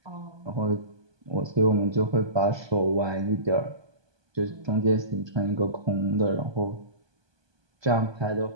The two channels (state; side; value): late; left; 1.2 ms